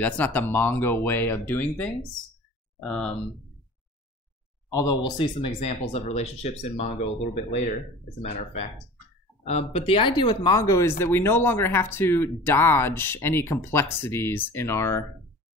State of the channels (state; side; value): normal; both; correlation 0.41